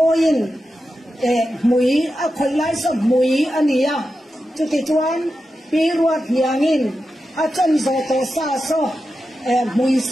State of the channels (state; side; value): normal; both; correlation 0.90